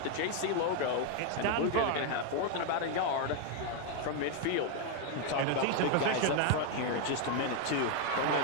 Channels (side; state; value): both; different; correlation 0.01